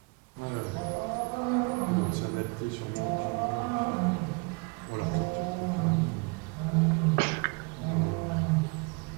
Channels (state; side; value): quieter; left; 30.5 dB